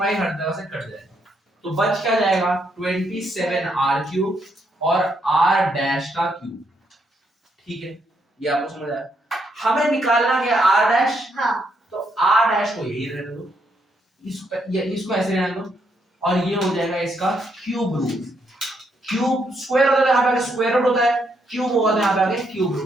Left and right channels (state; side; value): normal; both; correlation 0.76